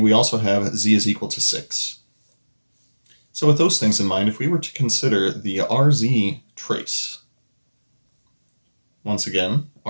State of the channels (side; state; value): both; inverted; correlation -1.00